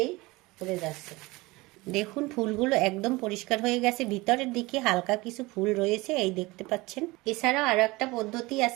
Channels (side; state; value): left; quieter; 22.0 dB